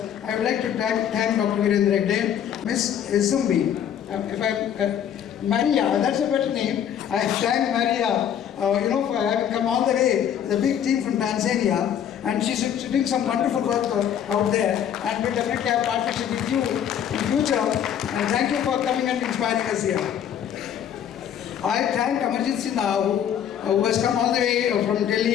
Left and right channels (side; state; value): right; quieter; 9.4 dB